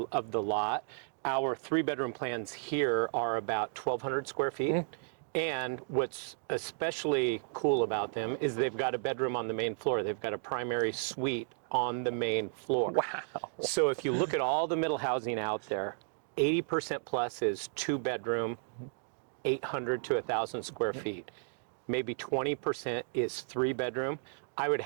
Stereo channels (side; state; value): left; silent; digital silence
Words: lot, our 3-bedroom plans here are about 1,200 square feet. And what's especially cool about them is they've got a bedroom on the main floor. They've got a primary suite on the main floor. Wow. So if you look at all the middle housing out there, 80% plus is 2-bedroom, 800 to 1,000 square feet. Maybe 20% is 3-bedroom. I would